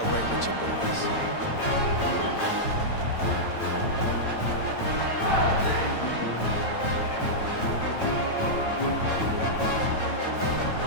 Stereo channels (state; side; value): late; right; 9.1 ms